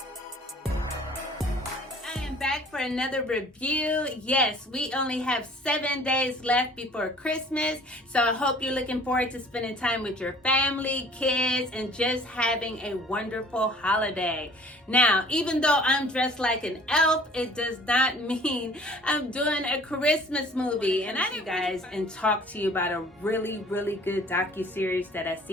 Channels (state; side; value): normal; both; correlation 0.51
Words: Back for another review. Yes, we only have 7 days left before Christmas, so I hope you're looking forward to spending time with your family, kids, and just having a wonderful holiday. Now, even though I'm dressed like an elf, it does not mean I'm doing a Christmas movie. And I you guys and talk to you about a really good DocuSeries that I've